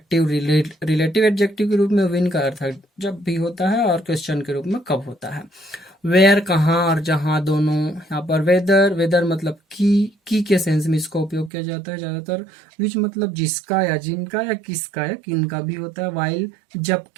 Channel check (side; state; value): left; drops out; at 11.5 s